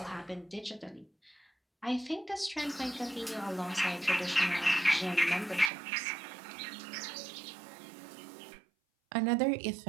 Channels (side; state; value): left; drops out; at 5.7 s